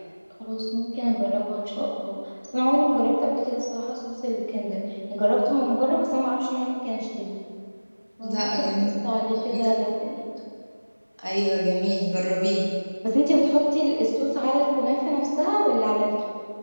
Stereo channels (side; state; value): both; inverted; correlation -1.00